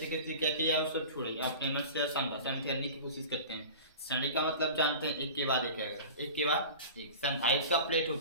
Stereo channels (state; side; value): inverted; both; correlation -0.35